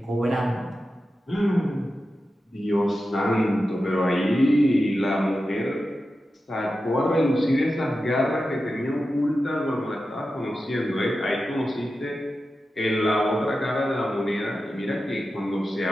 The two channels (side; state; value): both; normal; correlation 0.92